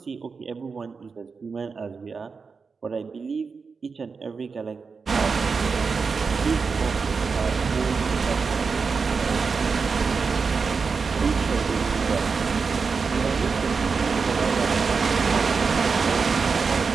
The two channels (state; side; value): quieter; left; 5.0 dB